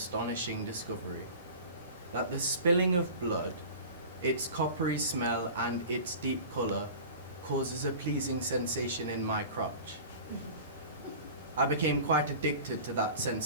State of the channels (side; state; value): both; inverted; correlation -0.38